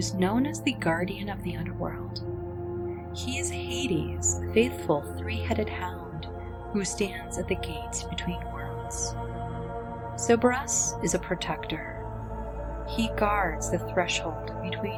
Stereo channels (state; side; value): identical; both; correlation 1.00